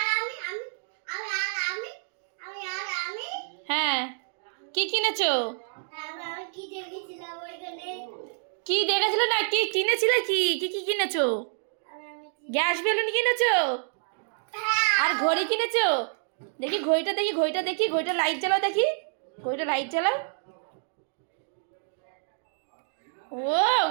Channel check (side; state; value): left; silent; digital silence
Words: হ্যাঁ, কি কিনেছো? কি দেখেছিল না, কি কিনেছিলে? কি কি কি কিনেছো? গ্যাস বেলুন কিনেছো? আর ঘড়ি কিনেছো? দেখি ঘড়িটা, দেখি ঘড়িটা, দেখি ঘড়িটা লাইট জ্বালাও, দেখি ঘড়িটা লাইট জ্বালাও। ও